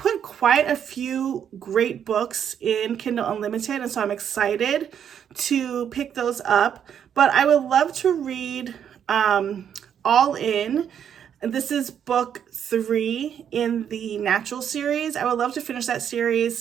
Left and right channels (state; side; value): quieter; left; 8.7 dB